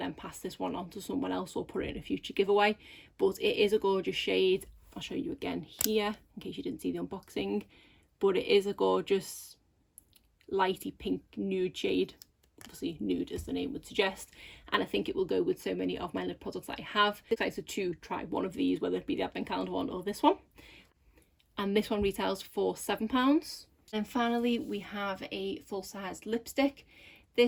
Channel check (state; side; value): identical; both; correlation 1.00